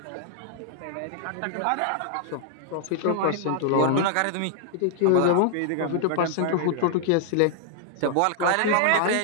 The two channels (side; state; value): both; different; correlation 0.00